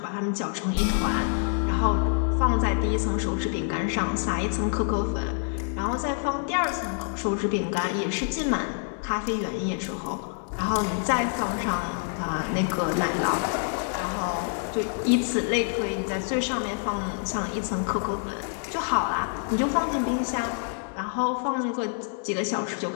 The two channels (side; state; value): right; silent; 60 dB below the other